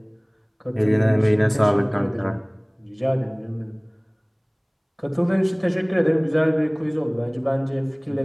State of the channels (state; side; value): identical; both; correlation 1.00